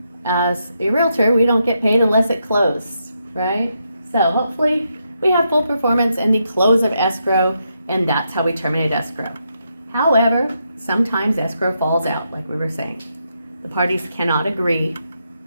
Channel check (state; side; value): inverted; both; correlation -0.81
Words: as a realtor, we don't get paid unless it closed, right? So hopefully we have full performance and the close of escrow, and that's how we terminate escrow. However, sometimes escrow falls out, like we were saying. The parties cannot agree,